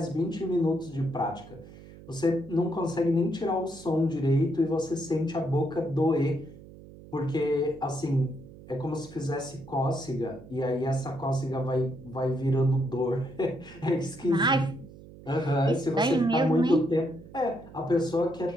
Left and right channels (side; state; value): right; noise; hum, 18 dB below the sound